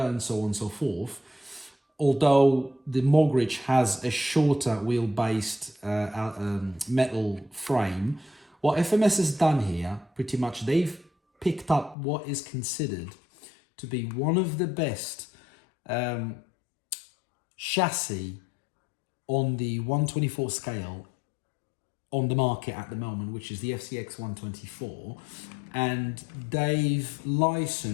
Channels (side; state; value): right; drops out; at 12.0 s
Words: so on and so forth. Although the Mogridge has a shorter wheel-based metal frame, what FMS has done here, pretty much, they've picked up what is considered to be one of the best chassis on the 124 scale on the market at the moment, which is the FCX24, and they've